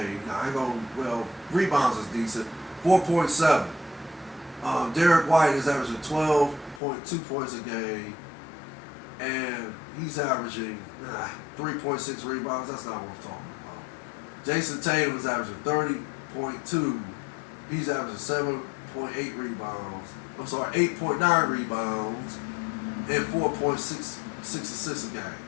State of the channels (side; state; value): right; drops out; at 6.8 s